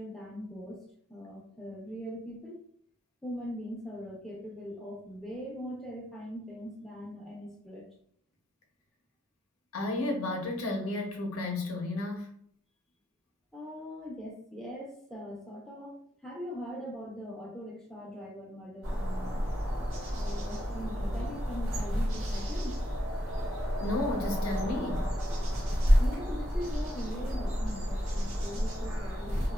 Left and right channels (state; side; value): normal; both; correlation 0.81